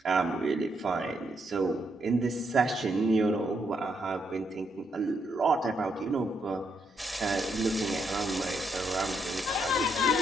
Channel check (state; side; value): normal; both; correlation 0.77